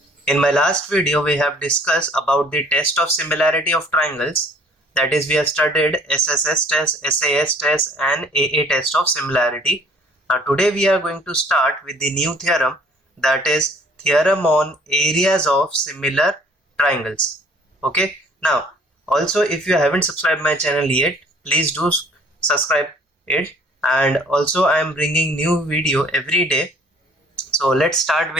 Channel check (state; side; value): normal; both; correlation 0.56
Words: In my last video, we have discussed about the test of similarity of triangles. That is, we have studied SSS test, SAS test and AA test of similarity. Now today we are going to start with the new theorem, that is theorem on areas of similar triangles. Okay. Now also, if you haven't subscribed my channel yet, please do subscribe it. And also I am bringing new video every day. So let's start